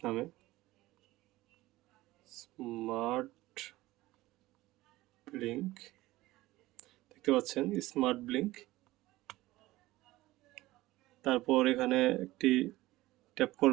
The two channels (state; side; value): quieter; left; 18.0 dB